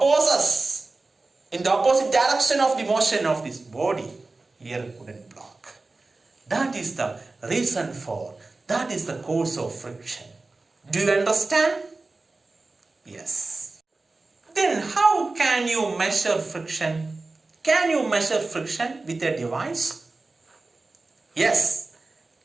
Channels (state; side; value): quieter; left; 3.4 dB